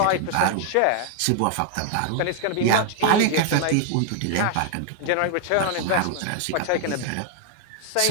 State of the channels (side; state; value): both; different; correlation 0.00